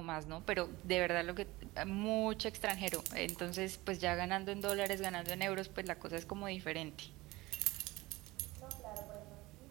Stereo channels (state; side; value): quieter; left; 20.3 dB